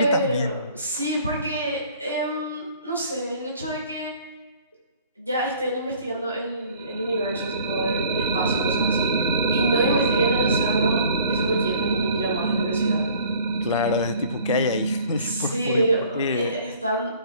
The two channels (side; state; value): both; inverted; correlation -0.53